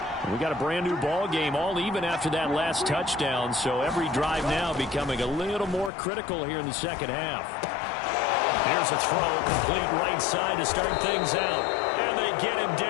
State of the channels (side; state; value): right; drops out; at 5.9 s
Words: We got a brand new ball game, all even after that last touchdown, so every drive now becoming a little more critical here in the second half. Here's a throw, complete right side to start things out. And they get him